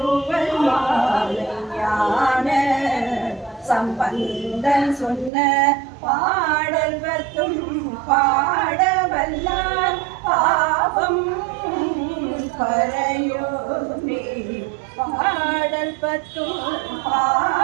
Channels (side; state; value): left; drops out; at 5.3 s